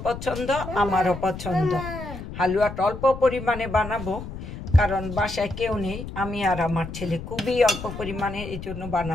পছন্দ আমারও পছন্দ। হালুয়াটা অল্প পরিমাণে বানাবো, কারণ বাসায় কেউ নেই, আমি আর আমার ছেলে, খুবই অল্প পরিমাণে, এই জন্য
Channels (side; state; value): left; noise; rumble, 9 dB below the sound